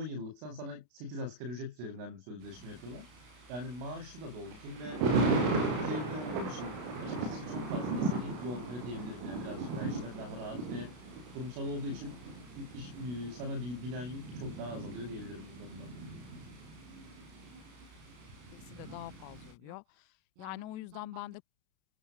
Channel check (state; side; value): late; left; 32 ms